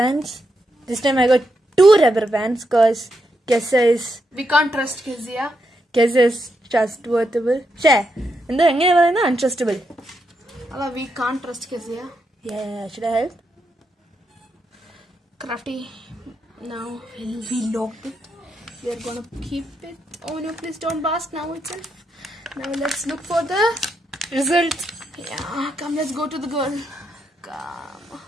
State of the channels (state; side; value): normal; both; correlation 0.82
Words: This time I got 2 rubber bands because Kessa is... We can't trust Kezia. Kessa is trustworthy. Share. And then untrustable. We can't trust Kezia. Yeah, should I help? Crafty. Now we locked it. We are gonna keep it. Oh no, please don't blast now itself. Now let's look for the result. Yeah, come, let's go to the girl. Come.